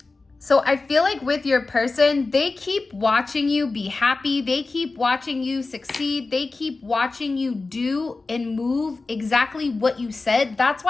So I feel like with your person, they keep watching you be happy. They keep watching you succeed. They keep watching you do and move exactly what you said. That's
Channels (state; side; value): quieter; right; 3.7 dB